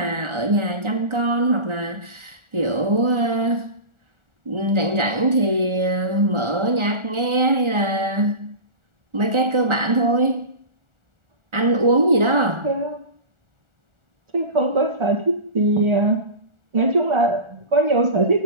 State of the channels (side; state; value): left; late; 1.4 ms